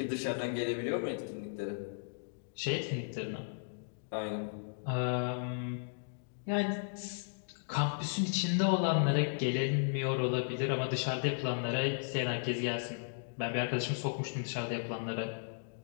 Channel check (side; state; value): right; silent; digital silence